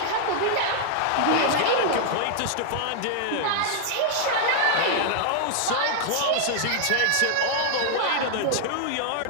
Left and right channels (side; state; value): both; different; correlation -0.01